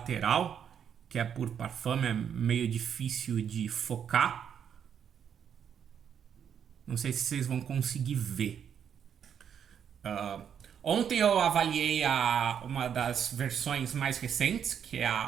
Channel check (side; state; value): left; quieter; 8.2 dB